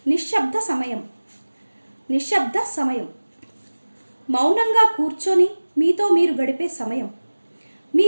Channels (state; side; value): inverted; both; correlation -1.00